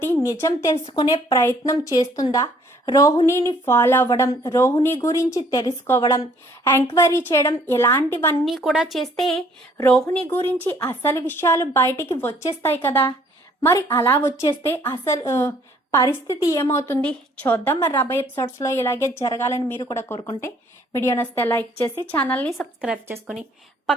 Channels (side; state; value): both; normal; correlation 0.61